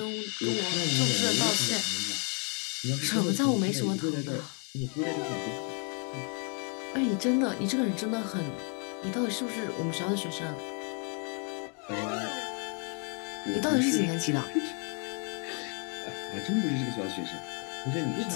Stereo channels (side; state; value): right; quieter; 39.1 dB